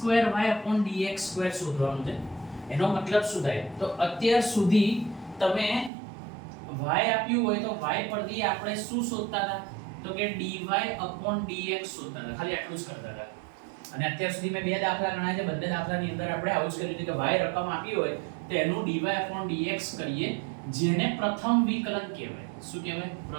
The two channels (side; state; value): left; drops out; at 5.9 s